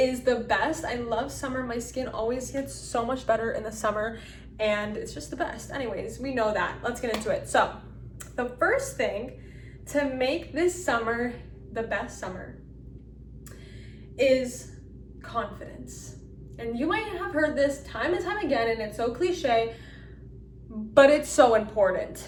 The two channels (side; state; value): both; identical; correlation 1.00